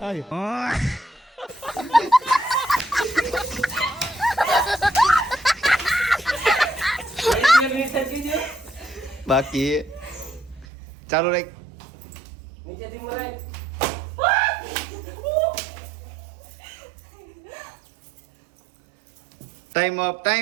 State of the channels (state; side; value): drops out; left; at 10.7 s